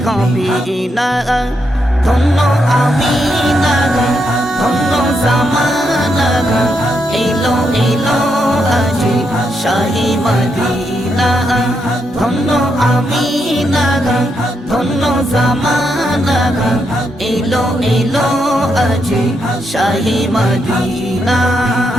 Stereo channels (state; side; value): normal; both; correlation 0.80